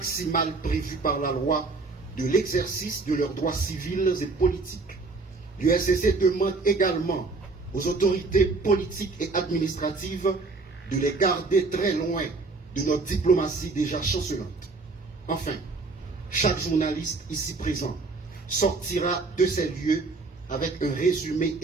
prévue par la loi de l'exercice de leurs droits civils et politiques. L'UNCC demande également aux autorités politiques et administratives de les garder très loin de notre diplomatie déjà chancelante. Enfin, chaque journaliste ici présent sortira de ces lieux avec un résumé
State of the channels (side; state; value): left; quieter; 3.8 dB